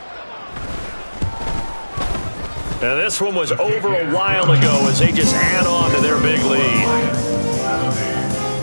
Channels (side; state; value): both; inverted; correlation -1.00